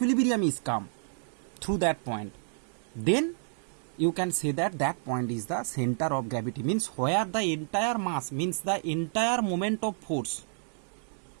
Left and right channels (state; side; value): silent; left; digital silence